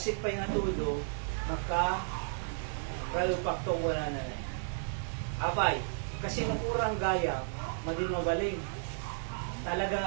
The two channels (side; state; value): left; silent; digital silence